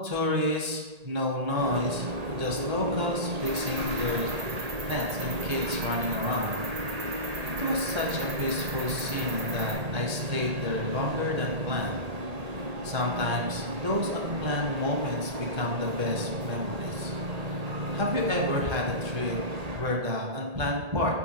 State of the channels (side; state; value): left; late; 1.8 ms